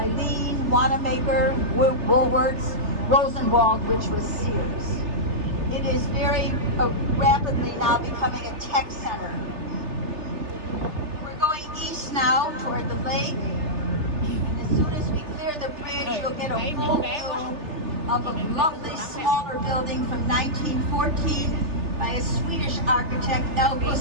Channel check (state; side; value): late; left; 3.3 ms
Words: Wanamaker, Woolworths, Rosenwald, which was Sears. It is very rapidly now becoming a tech center. We're going east now toward the lake. And as soon as we clear the bridge, you'll get a full view of a lovely smaller building from 1914 by a Swedish architect, L.